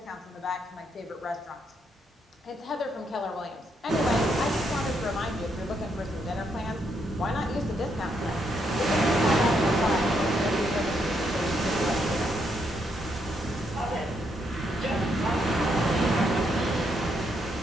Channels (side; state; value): both; normal; correlation 0.77